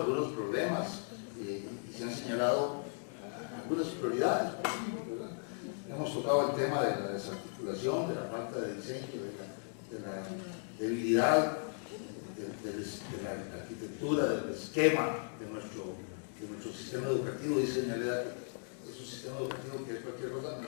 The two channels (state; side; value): silent; right; 53 dB below the other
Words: problemas y se han señalado algunas prioridades, ¿verdad? Hemos tocado el tema de la desarticulación, de la falta de diseño, de la debilidad de la arquitectura, del esquema de nuestro sistema educativo. Dice doña Leda que es un sistema educativo que es cualquier cosa, no